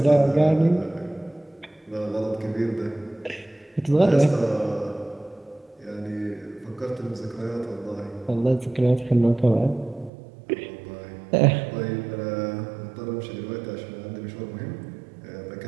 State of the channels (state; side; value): drops out; left; at 10.1 s